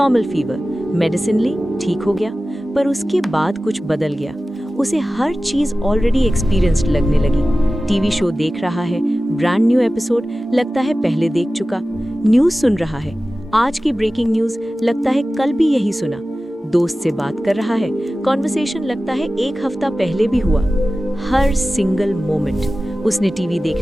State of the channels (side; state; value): both; normal; correlation 0.96